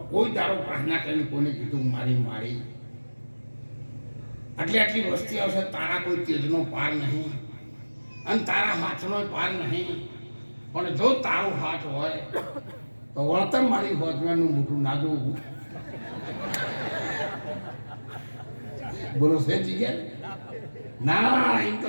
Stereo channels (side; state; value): both; inverted; correlation -1.00